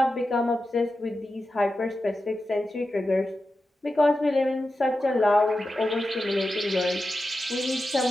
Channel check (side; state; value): both; normal; correlation 0.91